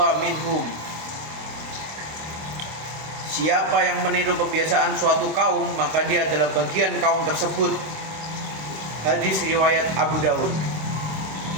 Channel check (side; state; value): left; late; 26 ms